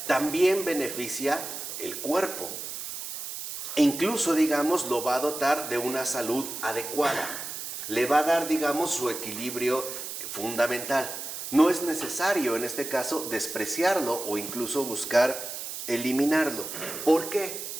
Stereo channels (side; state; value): right; noise; hiss, 7 dB below the sound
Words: también beneficia el cuerpo. E incluso, digamos, lo va a dotar de una salud adecuada. Le va a dar, digamos, su equilibrio fundamental. No es necesario, en este caso, despreciarlo o incluso buscar eliminarlo. ¿Por qué?